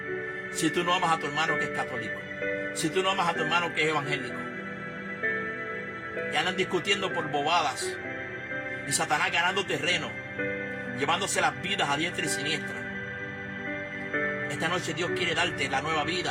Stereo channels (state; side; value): identical; both; correlation 1.00